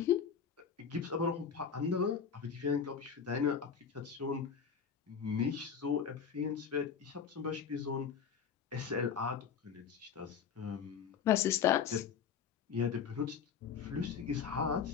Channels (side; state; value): right; quieter; 6.9 dB